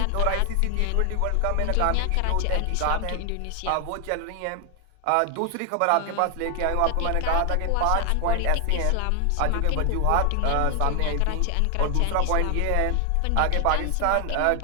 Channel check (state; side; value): different; both; correlation 0.00